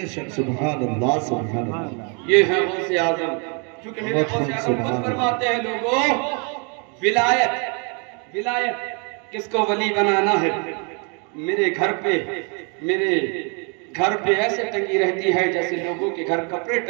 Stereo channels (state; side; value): quieter; left; 36.1 dB